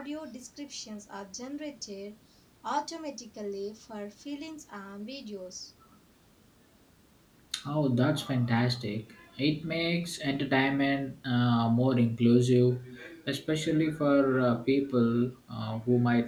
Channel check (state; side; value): identical; both; correlation 1.00